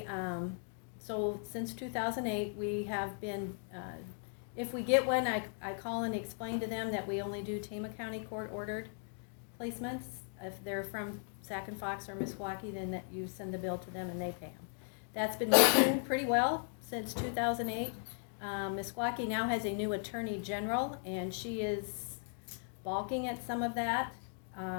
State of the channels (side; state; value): right; silent; 53 dB below the other